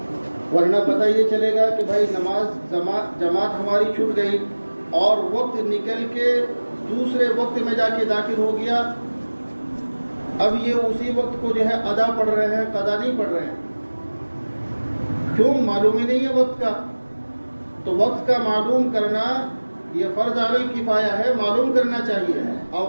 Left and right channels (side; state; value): both; inverted; correlation -1.00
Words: ورنہ پتہ یہ چلے گا کہ بھائی جماعت ہماری چھوٹ گئی اور وقت نکل کے دوسرے وقت میں جا کے داخل ہو گیا، اب یہ اسی وقت کو جو ہے ادا پڑھ رہے ہیں، قضا نہیں پڑھ رہے ہیں. کیوں؟ معلوم ہی نہیں ہے وقت کا. تو وقت کا معلوم کرنا یہ فرض علی الکفایہ ہے، معلوم کرنا چاہیے.